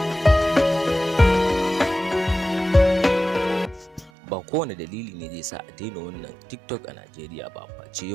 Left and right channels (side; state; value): left; drops out; at 4.1 s